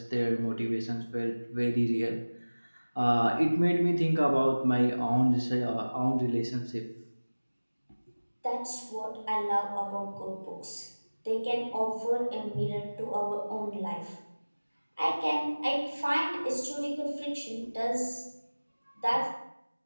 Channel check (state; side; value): inverted; both; correlation -1.00